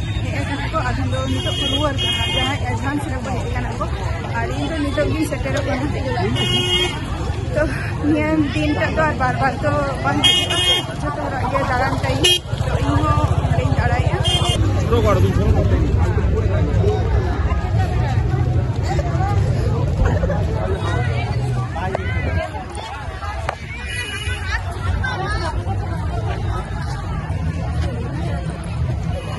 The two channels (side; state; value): both; identical; correlation 1.00